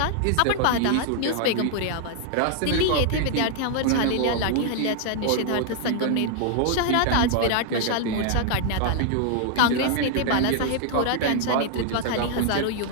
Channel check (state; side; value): different; both; correlation 0.00